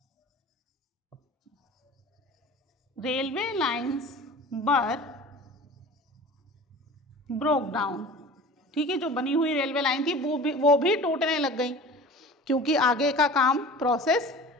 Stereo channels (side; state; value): both; normal; correlation 0.40